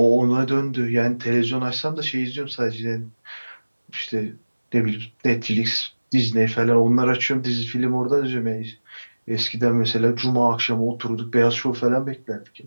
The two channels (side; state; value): both; inverted; correlation -1.00